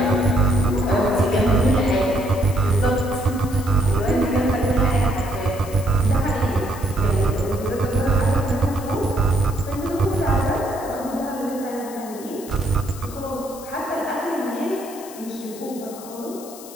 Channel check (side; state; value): left; noise; hiss, 17 dB below the sound